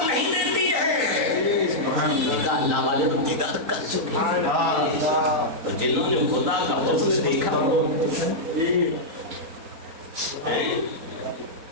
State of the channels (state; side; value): late; left; 3.9 ms